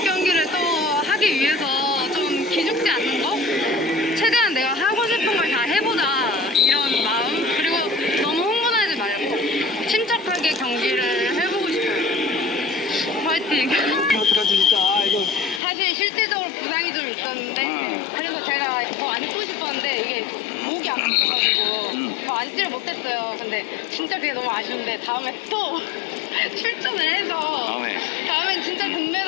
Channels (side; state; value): right; drops out; at 15.6 s